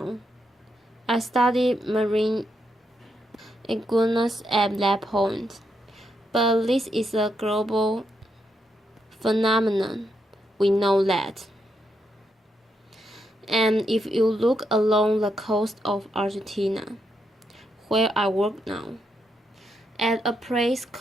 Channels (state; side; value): normal; both; correlation 0.81